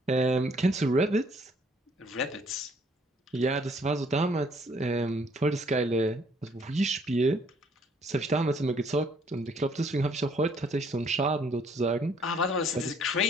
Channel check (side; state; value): both; normal; correlation 0.63